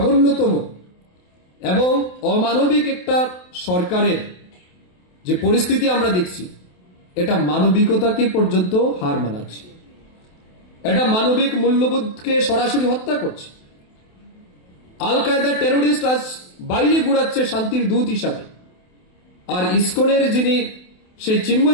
এবং অমানবিক একটা সরকারের যে পরিস্থিতি আমরা দেখছি, এটা মানবিকতাকে পর্যন্ত হার মানাচ্ছে। এটা মানবিক মূল্যবোধকে সরাসরি হত্যা করছে। আল কায়দা টেরোরিস্ট আজ বাইরে ঘুরাচ্ছে শান্তির দূত হিসাবে, আর ইসকনের যিনি সেই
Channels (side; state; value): right; late; 28 ms